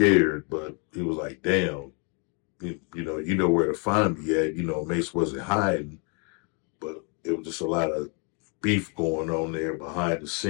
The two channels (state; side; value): quieter; right; 36.3 dB